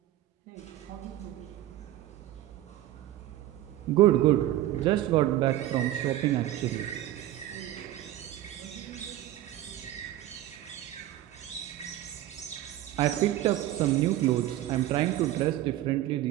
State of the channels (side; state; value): left; quieter; 14.0 dB